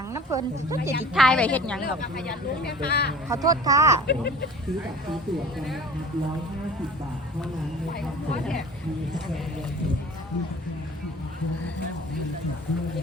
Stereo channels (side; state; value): both; normal; correlation 0.43